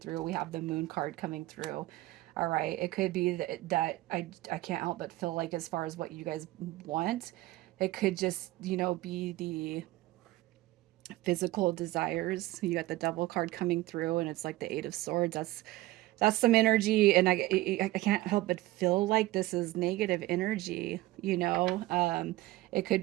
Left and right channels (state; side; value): quieter; left; 17.6 dB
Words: We have the Moon card coming through. All right. It could be that I can't help but feel like as far as what you guys want, it could just, you know, be the physical desires. You got the Devil card coming through and it's like the Eight of Swords. That's some energy, and I can't help but feel like this is negative energy, you know. It could